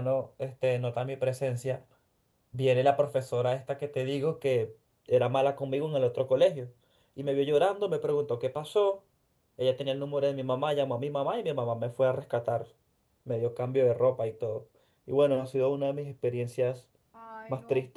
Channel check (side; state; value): both; identical; correlation 1.00